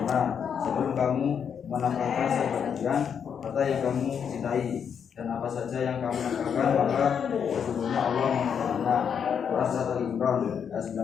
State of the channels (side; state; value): right; quieter; 7.5 dB